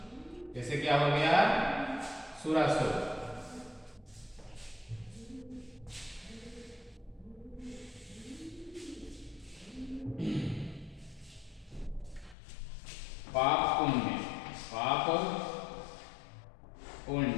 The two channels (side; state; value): right; drops out; at 12.4 s